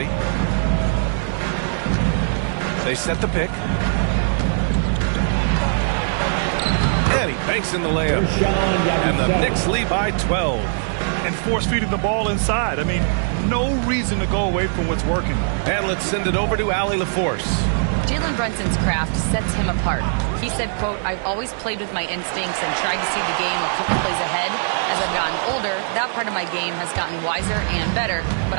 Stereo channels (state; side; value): silent; left; digital silence